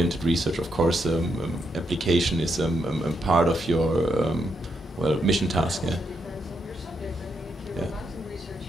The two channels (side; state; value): both; normal; correlation 0.80